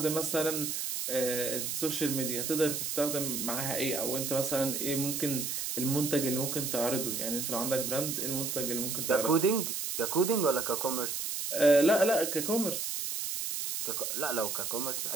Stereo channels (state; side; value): noise; right; hiss, 2 dB below the sound